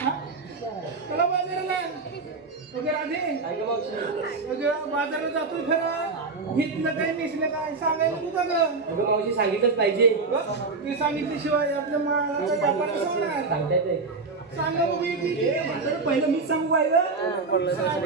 चला बाजाराला. अगं राधे, अगं बाजारात जातो खरं, घेतलं काय नेसलं काय सांगायला तू का गं? अगं मावशी सांगितलंच पाहिजे. ते सांगितल्याशिवाय आपलं व्यापार कसं होणार? सांगता येते. सांगा बघू पहिलं मीच सांगू पाहिलं.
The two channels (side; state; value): left; quieter; 4.1 dB